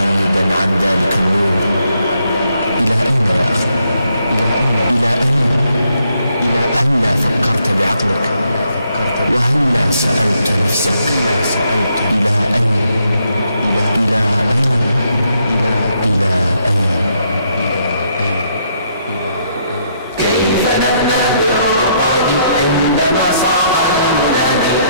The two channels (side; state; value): both; inverted; correlation -0.74